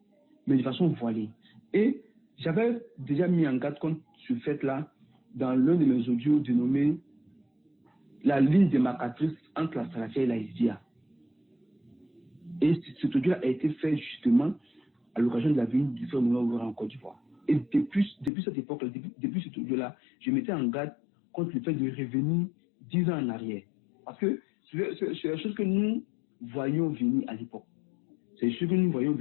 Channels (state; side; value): drops out; right; at 18.3 s